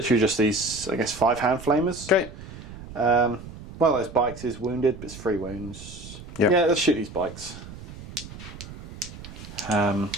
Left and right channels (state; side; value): noise; right; rumble, 14 dB below the sound